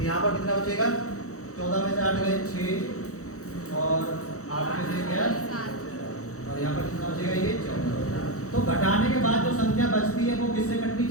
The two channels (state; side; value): late; right; 0.65 ms